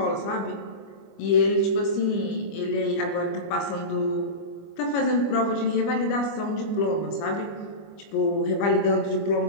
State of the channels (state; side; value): late; right; 25 ms